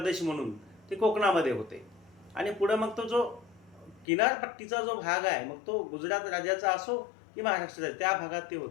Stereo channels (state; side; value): drops out; right; at 4.0 s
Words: म्हणून ते कोकणामध्ये होते. आणि पुढं मग तो जो किनारपट्टीचा जो भाग आहे, मग तो गुजरात राज्याचा असो की महाराष्ट्राचा, त्या भागात ते